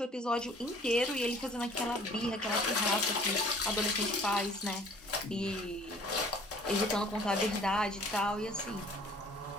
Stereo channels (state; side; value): normal; both; correlation 0.52